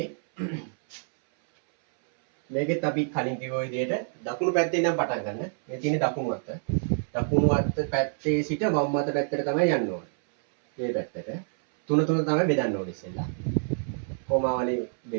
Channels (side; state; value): left; silent; 60 dB below the other